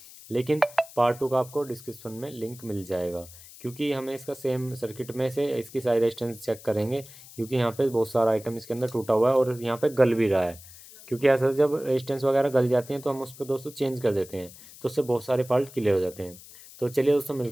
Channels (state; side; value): noise; left; hiss, 19 dB below the sound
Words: लेकिन पार्ट 2 का आपको डिस्क्रिप्शन में लिंक मिल जाएगा। क्योंकि हमें इसका सेम सर्किट में से इसकी सारी रेजिस्टेंस चेक करेंगे, क्योंकि यहाँ पे बहुत सारा आइटम इसके अंदर टूटा हुआ है और यहाँ पे गल भी रहा है। क्योंकि ऐसा जब रेजिस्टेंस वगैरह गल जाती हैं तो हम उस पर दोस्तों चेंज कर देते हैं, तो उससे बहुत सारे फॉल्ट क्लियर हो जाते हैं। तो चलिए दोस्तों